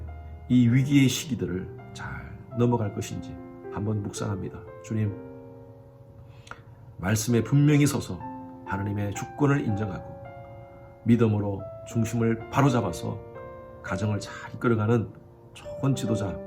이 위기의 시기들을 잘 넘어갈 것인지 한번 묵상합니다. 주님, 말씀에 분명히 서서 하나님의 주권을 인정하고 믿음으로 중심을 바로잡아서 가정을 잘 이끌어가는 좋은 지도자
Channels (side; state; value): both; identical; correlation 1.00